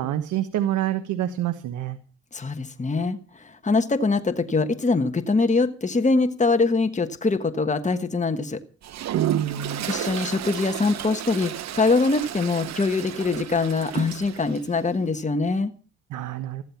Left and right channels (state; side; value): normal; both; correlation 0.55